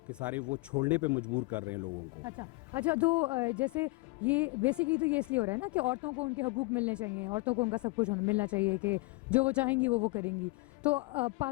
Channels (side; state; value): right; quieter; 24.2 dB